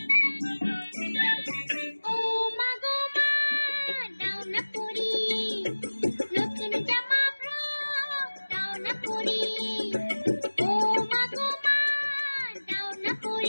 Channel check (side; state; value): both; inverted; correlation -1.00